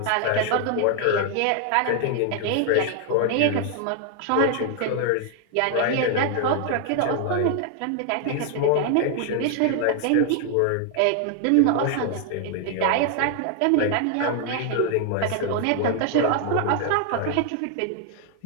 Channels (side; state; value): both; different; correlation 0.00